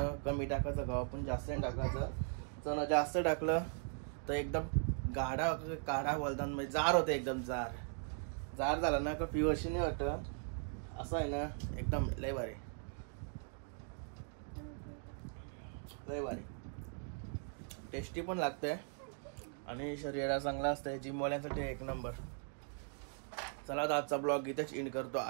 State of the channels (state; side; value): silent; left; 52 dB below the other